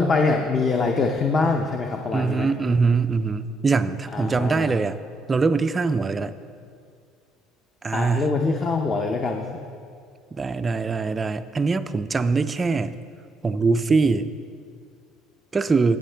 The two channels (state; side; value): normal; both; correlation 0.80